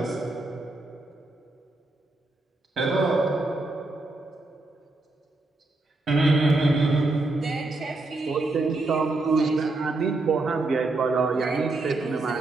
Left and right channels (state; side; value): quieter; left; 3.1 dB